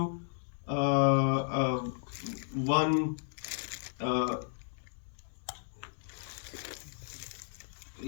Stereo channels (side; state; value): right; silent; digital silence